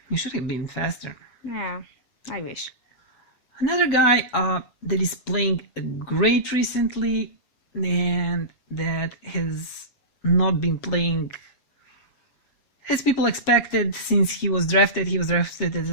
you should have been faster. Yeah, I wish. Another guy that is playing great recently, and that has not been playing as people expected since he was drafted. He was drafted as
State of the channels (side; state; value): right; late; 7.3 ms